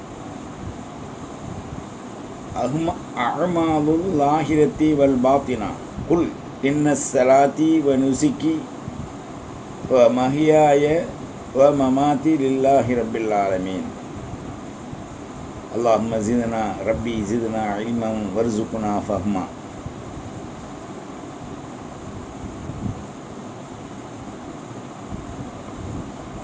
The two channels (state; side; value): identical; both; correlation 1.00